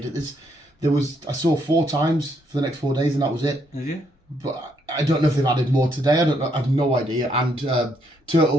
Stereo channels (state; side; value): normal; both; correlation 0.73